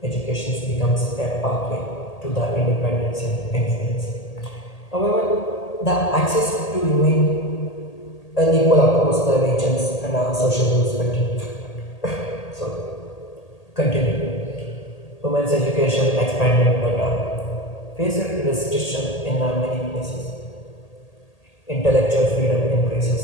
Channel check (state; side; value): late; right; 1.8 ms